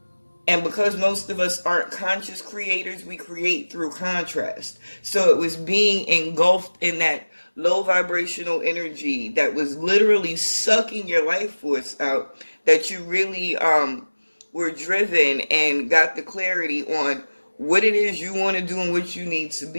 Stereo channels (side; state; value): both; inverted; correlation -1.00